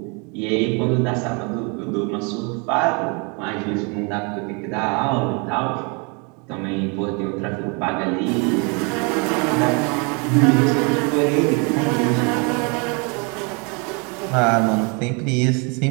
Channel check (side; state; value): left; quieter; 32.7 dB